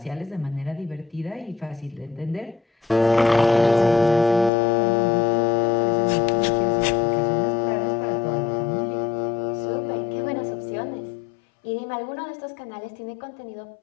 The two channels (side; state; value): right; drops out; at 4.5 s